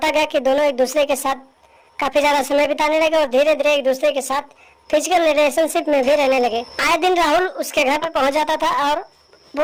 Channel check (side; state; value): both; identical; correlation 1.00